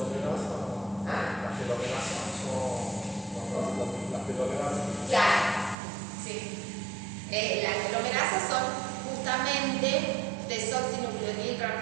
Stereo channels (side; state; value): left; drops out; at 5.8 s